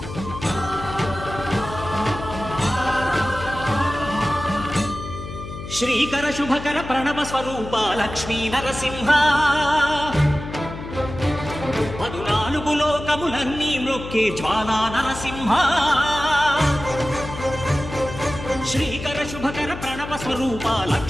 శ్రీకర శుభకర ప్రణవ స్వరూప లక్ష్మీ నరసింహ 14 లోకములన్నీ మ్రొక్కే జ్వాలా నరసింహ శ్రీకర శుభకర ప్రణవ స్వరూప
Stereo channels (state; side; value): noise; left; hum, 10 dB below the sound